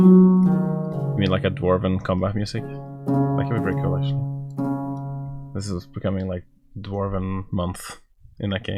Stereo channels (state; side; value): identical; both; correlation 1.00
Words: mean like a Dwarven combat music? That could be pretty cool actually. This is becoming like Dwarven month in that